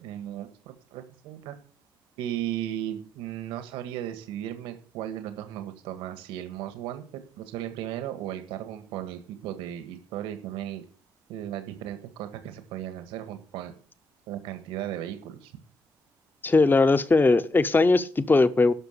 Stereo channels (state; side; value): normal; both; correlation 0.80